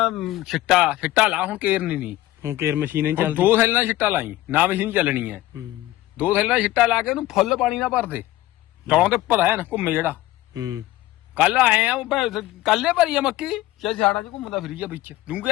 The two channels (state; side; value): quieter; right; 16.1 dB